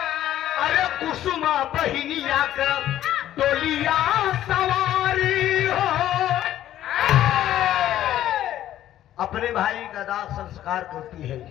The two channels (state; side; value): quieter; right; 12.5 dB